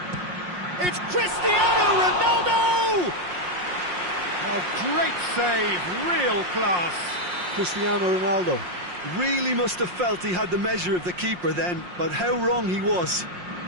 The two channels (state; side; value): late; left; 5.6 ms